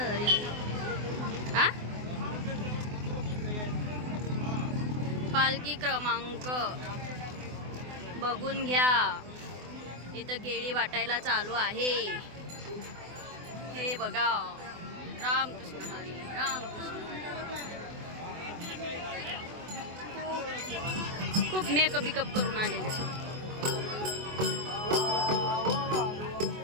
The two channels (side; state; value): left; late; 24 ms